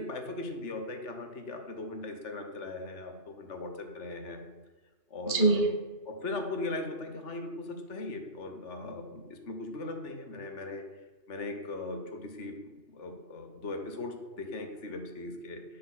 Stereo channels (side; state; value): right; late; 2.8 ms